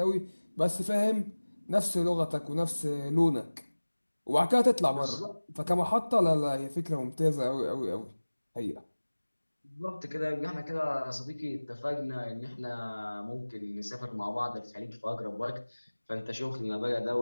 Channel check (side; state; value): both; inverted; correlation -1.00